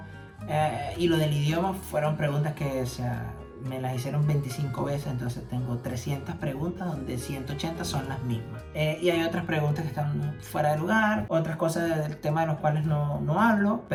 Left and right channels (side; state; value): both; identical; correlation 1.00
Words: y lo del idioma fueron preguntas que, o sea, me las hicieron 25 veces, entonces tengo 300 preguntas donde 180 son las mismas. Y hay otras preguntas que están fuera de lugar, otras cosas del tema de los cuales no hablo.